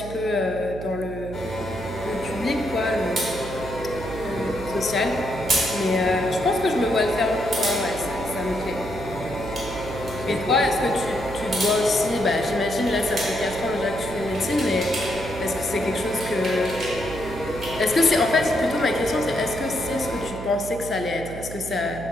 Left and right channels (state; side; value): noise; right; hum, 10 dB below the sound